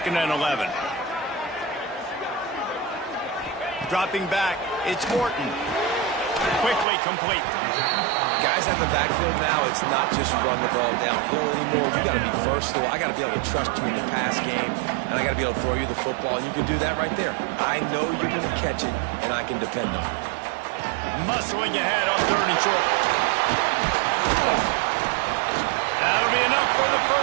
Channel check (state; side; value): drops out; left; at 6.9 s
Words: and 11. Dropping back, it's Morton. Quickly complete. Guys at the backfield now, it's not just run the ball downhill anymore. You got to be versatile. I got to be able to trust you in the pass game, and I got to be able to throw you the football, and you can do that right there. I know you're going to catch it, and I can depend on it. Muscling ahead on 3rd and short. That'll be enough for the